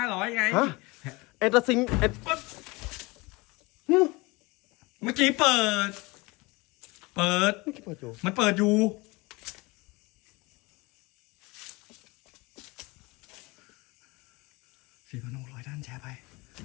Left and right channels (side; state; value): right; quieter; 24.3 dB